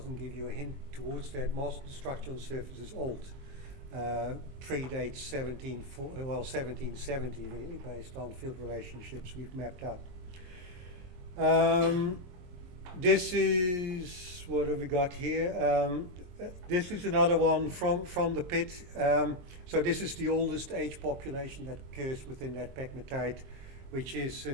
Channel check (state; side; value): late; left; 22 ms